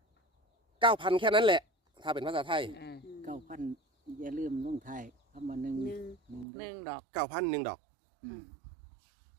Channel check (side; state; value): left; drops out; at 6.5 s